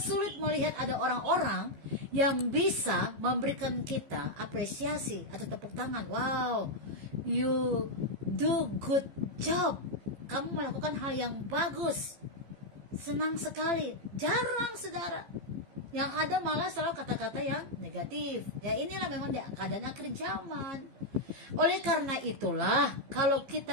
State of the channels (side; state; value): left; late; 15 ms